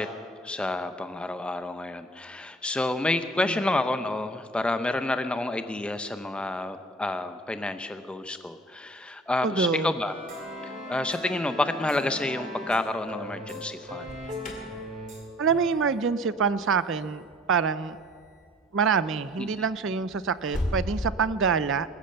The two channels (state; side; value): normal; both; correlation 0.48